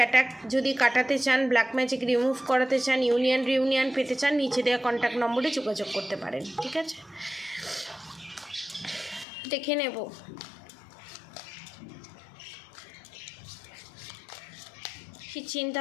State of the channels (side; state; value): right; drops out; at 9.2 s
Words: যদি কাটাতে চান, ব্ল্যাক ম্যাজিক রিমুভ করাতে চান, রিউনিয়ন পেতে চান, নিচে দেওয়া কন্ট্যাক্ট নম্বরে যোগাযোগ করতে পারেন। ঠিক আছে, দেখে নেব কি চিন্তা